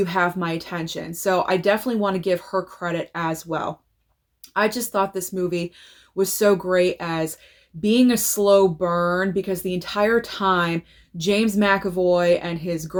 have my attention. So I definitely want to give her credit as well. I just thought this movie was so great as being a slow burn because the entire time James McAvoy and his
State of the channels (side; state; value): both; identical; correlation 1.00